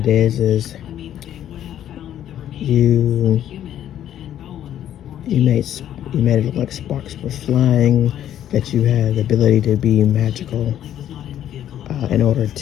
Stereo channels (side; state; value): right; quieter; 11.1 dB